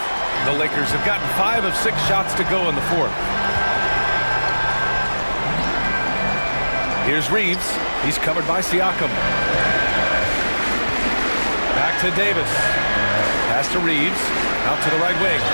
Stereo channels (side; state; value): both; inverted; correlation -1.00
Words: The Lakers have gotten 5 of 6 shots to go in the fourth. Here's Reeves. He's covered by Siakam. Back to Davis. Pass to Reeves. Out to the right wing.